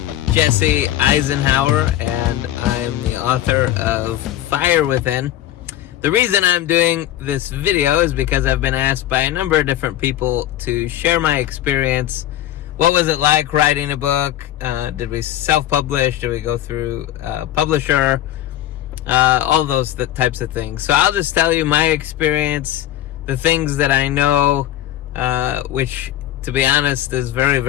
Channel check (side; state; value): right; quieter; 13.0 dB